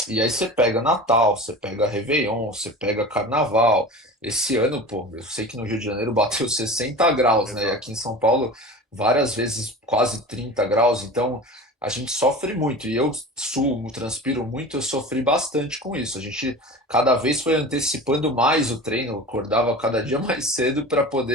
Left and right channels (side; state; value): both; normal; correlation 0.34